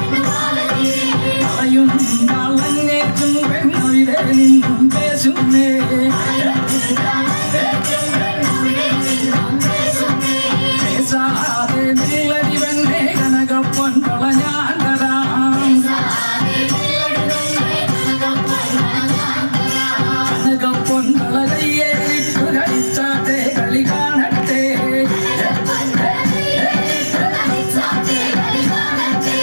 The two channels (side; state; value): both; inverted; correlation -1.00